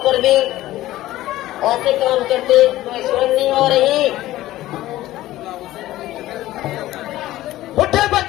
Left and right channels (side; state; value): right; quieter; 15.6 dB